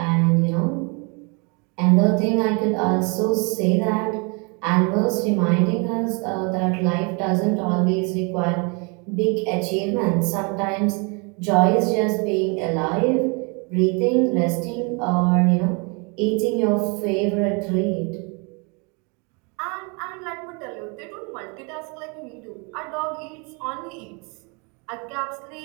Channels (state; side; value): quieter; left; 32.8 dB